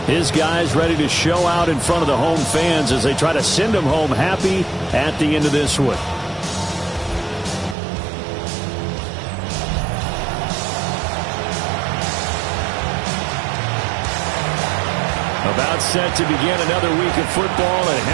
His guys ready to show out in front of the home fans as they try to send them home happy at the end of this one. About set to begin another week of football, and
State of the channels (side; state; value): left; drops out; at 7.8 s